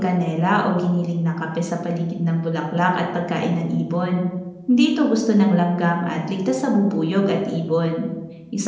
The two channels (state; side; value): identical; both; correlation 1.00